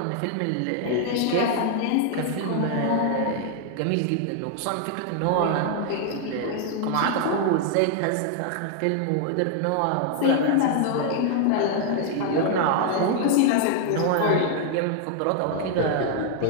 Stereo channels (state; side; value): different; both; correlation 0.00